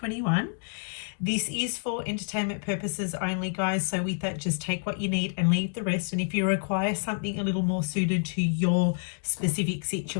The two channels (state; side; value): silent; right; digital silence